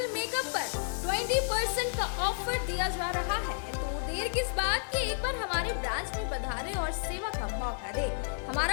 मेकअप पर 20% का ऑफर दिया जा रहा है। तो देर किस बात की, एक बार हमारे ब्रांच में पधारे और सेवा का मौका दे।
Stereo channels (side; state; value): right; silent; 57 dB below the other